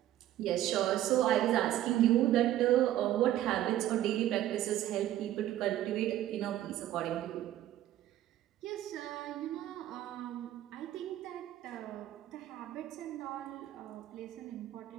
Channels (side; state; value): left; quieter; 13.0 dB